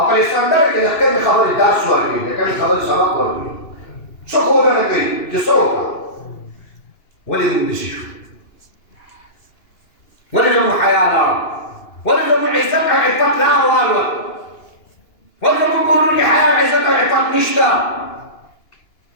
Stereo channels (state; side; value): late; right; 2.9 ms